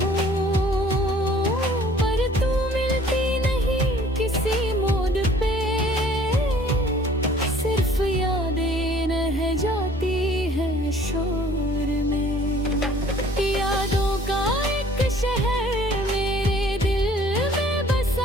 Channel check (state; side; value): normal; both; correlation 0.54